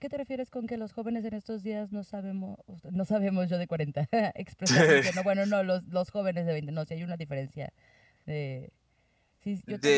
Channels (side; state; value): both; identical; correlation 1.00